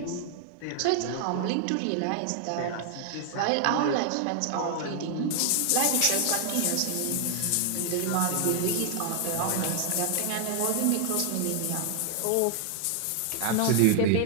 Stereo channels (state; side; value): different; both; correlation 0.00